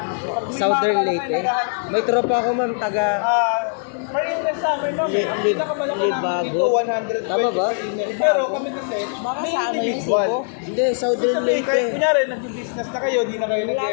Southern Leyte? May tropa ako ma'am taga Per-index sa amin, no? Ang pinakamalaki namin Libago. dito, 120 Tama ba? index. Pero kami kasi, Baka may sa ano yung individual. Cebu? Hindi, Southern Sabi, kahit Leyte. kunyari, nag-business na kayo, di na kayo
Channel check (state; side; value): silent; right; digital silence